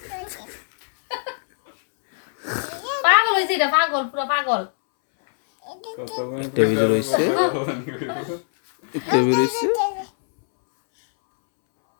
পাগল হয়েছে এটা পাগল পুরো পাগল টেবিল রয়েছে টেবিল রয়েছে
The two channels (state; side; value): silent; right; 64 dB below the other